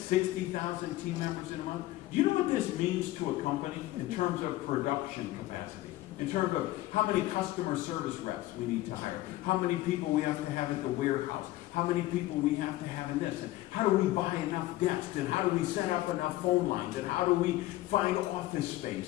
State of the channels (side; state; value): right; quieter; 16.7 dB